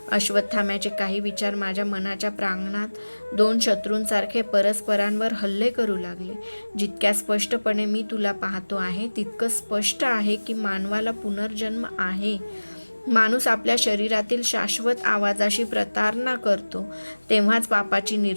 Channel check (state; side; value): inverted; both; correlation -1.00